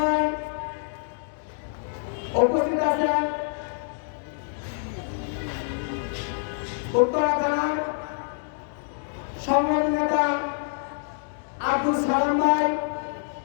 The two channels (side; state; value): right; silent; digital silence